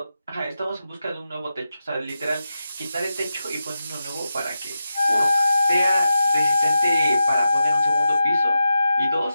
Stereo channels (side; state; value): both; inverted; correlation -0.90